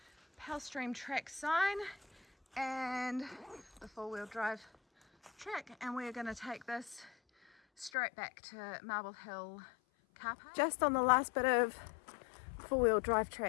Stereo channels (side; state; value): right; drops out; at 7.9 s